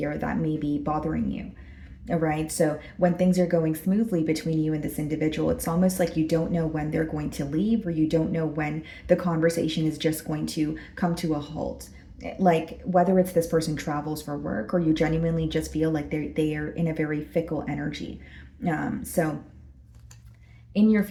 that may be bothering you. All right. So when things are going smoothly between you and this individual, it's almost like you don't know when they're going to leave, or you don't know when the conversation is just going to come to a halt. Like whether it's this person travels for work, or you genuinely just feel like they are in a very fickle energy. So in your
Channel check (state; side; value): identical; both; correlation 1.00